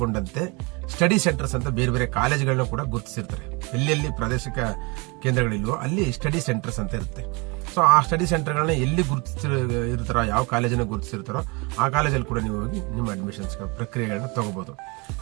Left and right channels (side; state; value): left; quieter; 28.7 dB